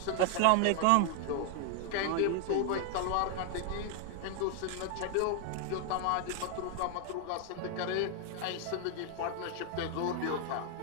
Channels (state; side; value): different; both; correlation 0.00